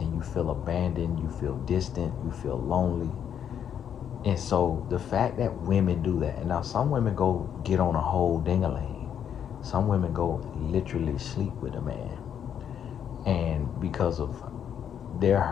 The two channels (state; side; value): quieter; right; 8.8 dB